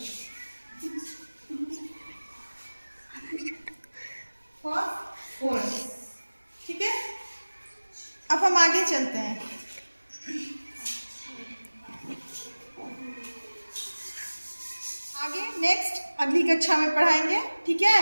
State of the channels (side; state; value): both; inverted; correlation -1.00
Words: फास्फोरस। ठीक है। अब हम आगे चलते हैं। आगे नेक्स्ट अगली कक्षा में पढ़ाएंगे। ठीक है।